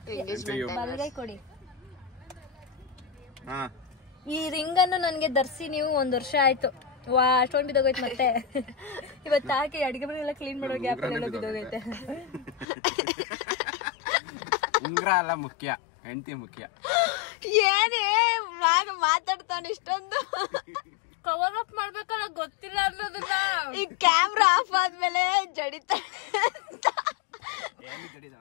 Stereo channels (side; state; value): right; drops out; at 12.7 s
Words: ಬಲಗೈ ಕೊಡಿ. ಈ ರಿಂಗ್ ಅನ್ನು ನನ್ಗೆ ಧರಿಸಿ ನೀವು 1 ವರ್ಷ ಆಯ್ತು. ಅಷ್ಟೊಂದು ಬಿದ್ದೋಗೈತೆ. ಮತ್ತೆ ಇವತ್ತು ಹಾಕಿ ಅಡಿಗೆ ಮನೆಲ್ಲ ಕ್ಲೀನ್ ಮಾಡೋ ಗ್ಯಾಪ್ ಎಲ್ಲ ಬಿದ್ದೋಗೈತೆ. ಉಂಗ್ರ ಅಲ್ಲ ಮುಖ್ಯ, ಹೆಂಡತಿ ಮುಖ್ಯ. ಏನೇ ಮಾತಾಡ್ತಾನೆ ಇಷ್ಟೊಂದು. ಕವರ್ ಅಪ್ ಮಾಡ್ಬೇಕಲ್ಲ, ಗೊತ್ತಿಲ್ಲ ಅನ್ನೋದನ್ನ. ಈ ಕ್ಯಾಮ್ರಾ ಆಫ್ ಆದ್ಮೇಲೆ ಜಡಿತ